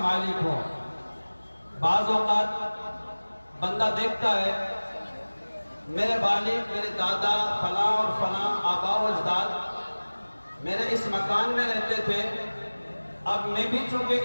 مالک ہوں۔ بعض اوقات بندہ دیکھتا ہے میرے والد، میرے دادا فلاں اور فلاں آبا و اجداد میرے اس مکان میں رہتے تھے، اب میں بھی چونکہ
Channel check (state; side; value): inverted; both; correlation -1.00